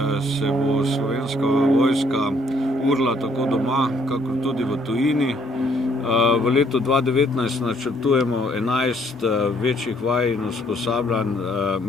se bo Slovenska vojska urila tako doma, kakor tudi v tujini. V letu 2019 načrtujemo 11 večjih vaj in usposabljanj,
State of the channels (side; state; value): both; normal; correlation 0.66